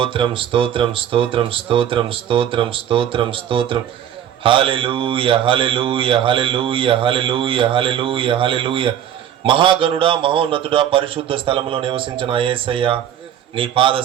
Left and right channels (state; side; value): quieter; left; 10.0 dB